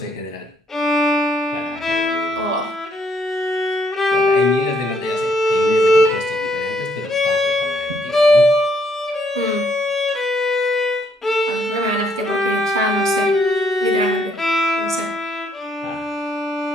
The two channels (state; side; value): normal; both; correlation 0.70